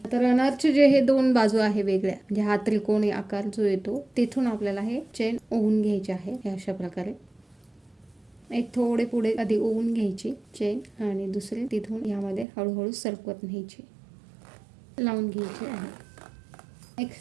आता रनरचे जे हे दोन बाजू आहे वेगळ्या, म्हणजे हा त्रिकोणी आकार जो येतो तिथून आपल्याला हे चेन ओवून घ्यायचे आहे। अशा प्रकारे एक थोडे पुढे आधी ओवून घ्यायची चेन आणि दुसरी तिथून यामध्ये हळूहळू सरकवत न्यायची, लावून घ्यायची आहे।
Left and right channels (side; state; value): left; drops out; at 12.5 s